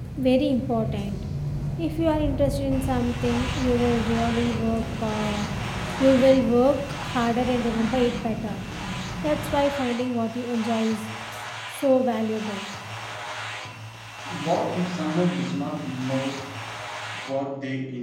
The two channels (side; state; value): both; identical; correlation 1.00